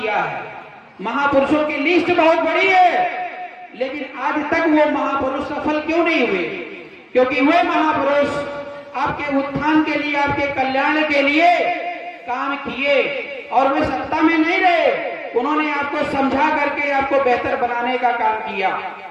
है। महापुरुषों की लिस्ट बहुत बड़ी है, लेकिन आज तक वो महापुरुष सफल क्यों नहीं हुए? क्योंकि वे महापुरुष आपके उत्थान के लिए, आपके कल्याण के लिए काम किए और वे सत्ता में नहीं रहे। उन्होंने आपको समझा करके आपको बेहतर बनाने का काम किया।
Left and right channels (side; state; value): both; identical; correlation 1.00